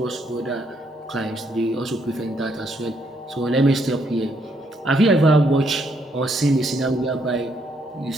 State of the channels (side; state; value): both; normal; correlation 0.73